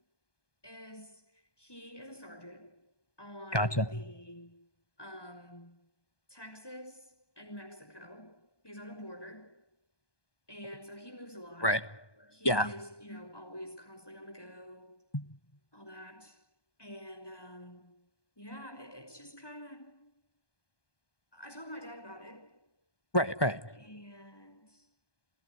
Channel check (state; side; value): late; right; 1.2 ms